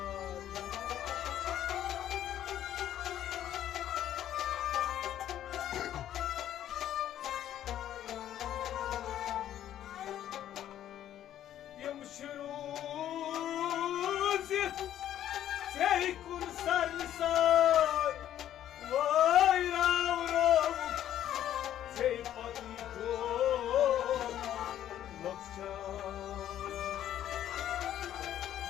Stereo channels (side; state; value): right; quieter; 11.4 dB